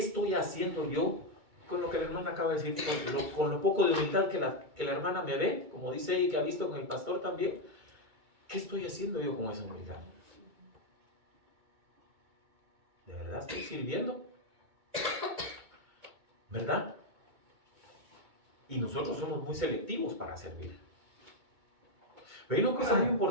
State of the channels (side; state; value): left; late; 2.2 ms